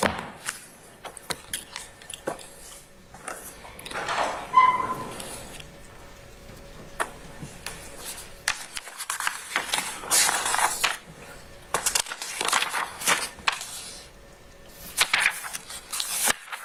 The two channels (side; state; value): both; identical; correlation 1.00